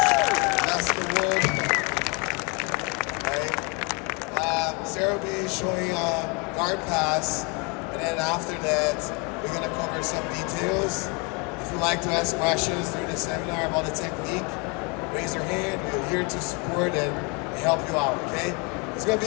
That's the word. Right? Sarah will be showing guard pass, and then after that, we're going to cover some details. If you'd like to ask questions during the seminar about the technique, raise your hand. We're here to support and help you out, okay? It's going to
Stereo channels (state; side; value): quieter; right; 31.4 dB